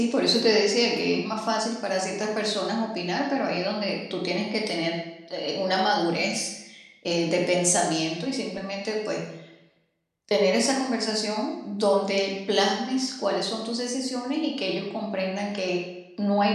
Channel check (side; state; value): both; identical; correlation 1.00